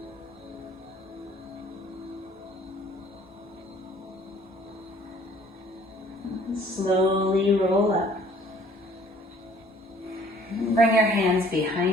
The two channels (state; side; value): normal; both; correlation 0.56